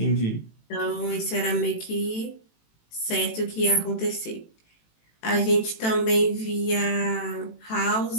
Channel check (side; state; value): right; late; 18 ms